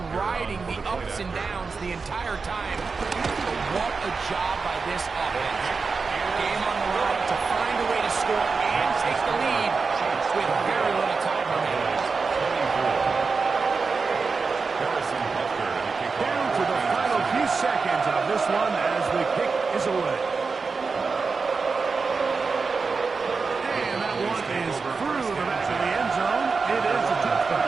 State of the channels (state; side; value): quieter; left; 4.7 dB